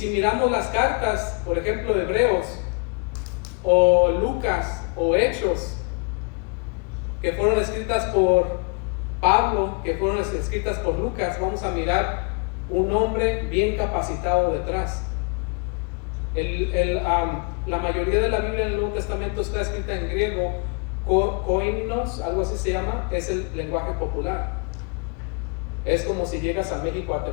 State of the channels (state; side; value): quieter; right; 34.4 dB